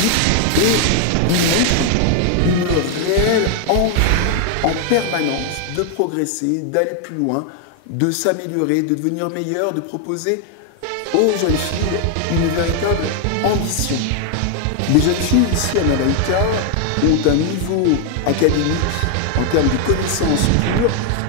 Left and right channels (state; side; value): different; both; correlation 0.00